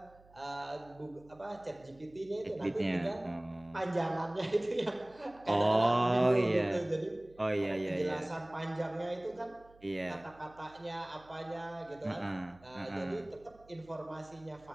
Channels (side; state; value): right; noise; hum, 26 dB below the sound